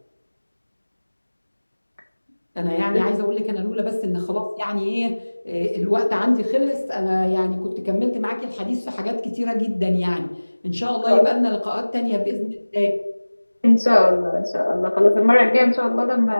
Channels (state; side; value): inverted; both; correlation -1.00